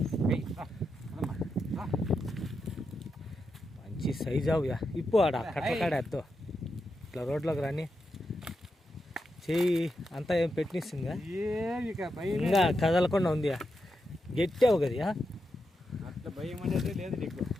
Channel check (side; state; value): both; normal; correlation 0.86